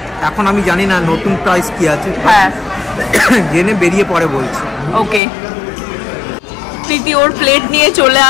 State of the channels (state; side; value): drops out; right; at 5.2 s